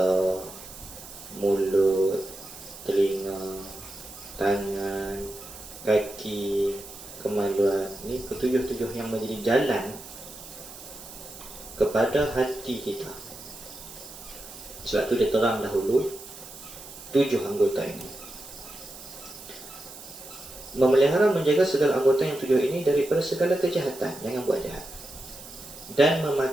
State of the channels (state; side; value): noise; right; hiss, 15 dB below the sound